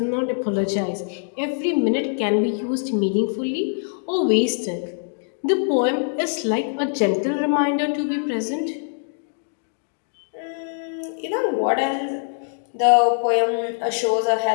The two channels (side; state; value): right; silent; digital silence